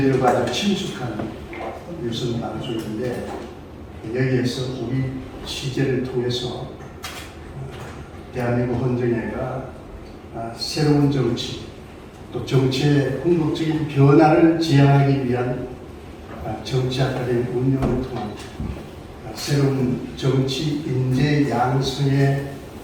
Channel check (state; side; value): identical; both; correlation 1.00